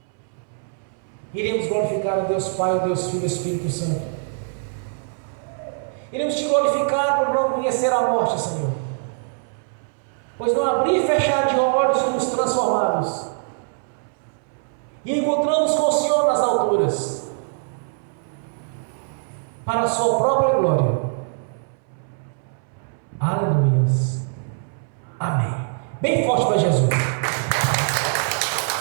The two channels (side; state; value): left; silent; 63 dB below the other